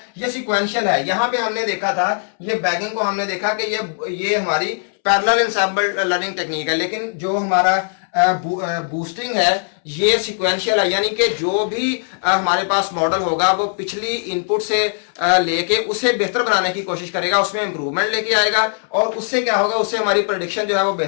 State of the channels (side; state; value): right; silent; 66 dB below the other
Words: ये सीक्वेंशियल है। यहां पे हमने देखा था, ये बैगिंग को हमने देखा कि ये हमारी पैरेलल इंसेंबल लर्निंग टेक्निक है, लेकिन जो हमारा बूस्टिंग है ये सीक्वेंशियल है। यानी कि जो भी हमारे पास मॉडल होगा वो पिछली इनपुट से लेके उसे बेहतर बनाने की कोशिश करेगा, उसमें इंप्रूवमेंट लेके आएगा और उससे क्या होगा, उससे हमारी प्रेडिक्शन जो है वो